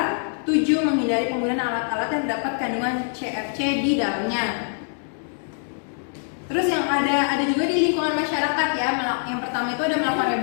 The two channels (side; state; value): right; silent; 61 dB below the other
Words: 7, menghindari penggunaan alat-alat yang terdapat kandungan CFC di dalamnya. Terus yang ada juga di lingkungan masyarakat ya. Yang pertama itu ada melakukan